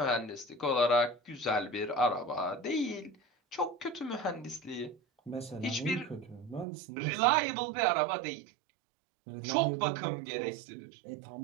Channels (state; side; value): drops out; left; at 6.7 s